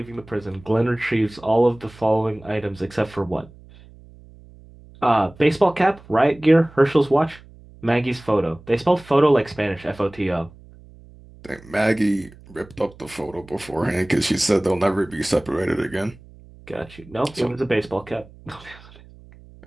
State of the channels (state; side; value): noise; right; hum, 22 dB below the sound